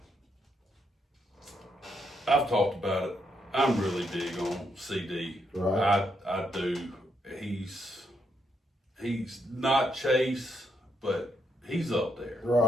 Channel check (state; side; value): normal; both; correlation 0.78